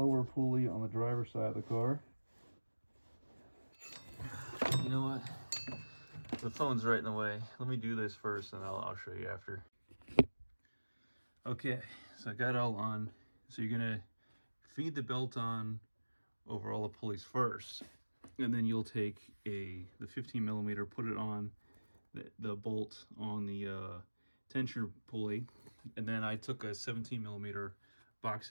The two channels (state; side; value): inverted; both; correlation -1.00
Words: pulley on the driver's side of the car. You know what? The phone's right in the way. Let me do this first, and I'll show you after. Okay, so I got it all on. So you're gonna feed the belt on over all the pulleys first, and then you'll take the 15 millimeter, put it on the bolt on the tensioner pulley, and then I took a 17 millimeter box